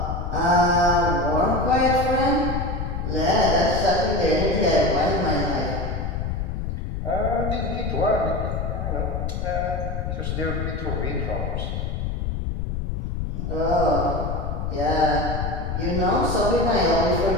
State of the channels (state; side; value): noise; left; rumble, 3 dB below the sound